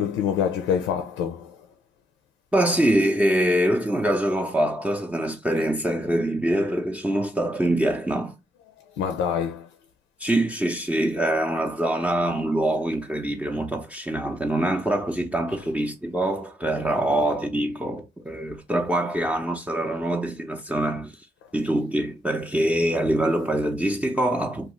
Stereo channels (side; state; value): both; normal; correlation 0.78